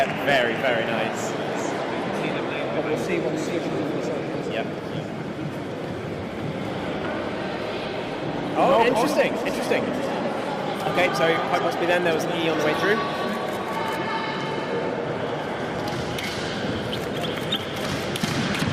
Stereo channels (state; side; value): identical; both; correlation 1.00